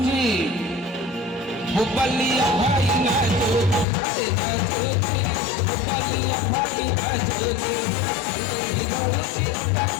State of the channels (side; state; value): right; drops out; at 3.9 s